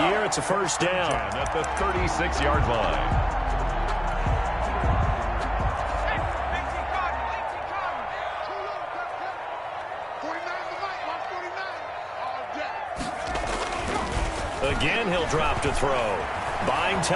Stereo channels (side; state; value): both; identical; correlation 1.00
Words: year. It's a first down. At the 36-yard line. Again, he'll drop to throw. Buying